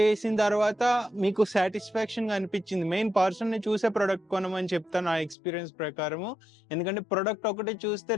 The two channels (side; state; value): right; drops out; at 5.4 s